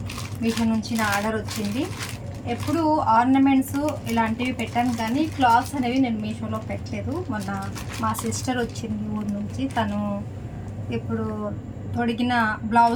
మీషో నుంచి నా ఆర్డర్ వచ్చింది. ఎప్పుడు ఆర్నమెంట్స్ ఇలాంటివి పెట్టాను, కానీ క్లాత్స్ అనేవి నేను మీషోలో పెట్టలేదు. మొన్న మా సిస్టర్ వచ్చింది ఊరు నుంచి. తను ఇప్పుడు తొడిగిన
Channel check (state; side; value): identical; both; correlation 1.00